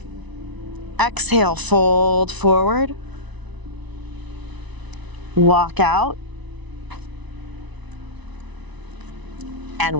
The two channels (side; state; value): left; late; 1.0 ms